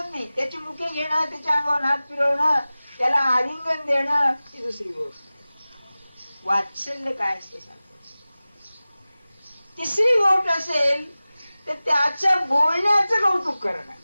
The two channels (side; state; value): both; inverted; correlation -0.97